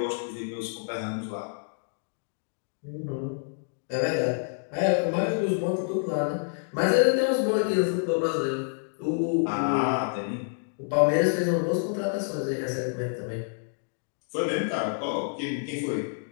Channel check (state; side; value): silent; right; digital silence